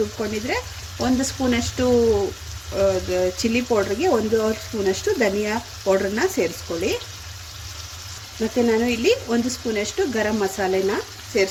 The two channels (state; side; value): identical; both; correlation 1.00